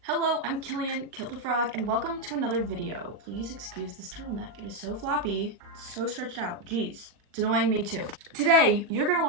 Hello, I'm Killian, Kill the Frog, and welcome to another video. Please excuse this turtleneck. It is so floppy, so stretched out. Jeez, it's annoying me too. Today, you're gonna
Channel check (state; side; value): late; left; 40 ms